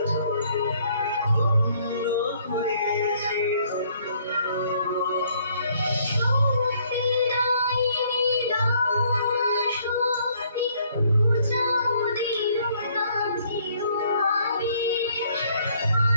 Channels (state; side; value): inverted; both; correlation -0.64